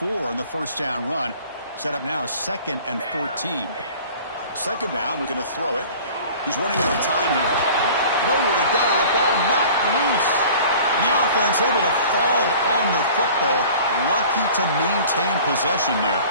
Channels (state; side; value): inverted; both; correlation -0.45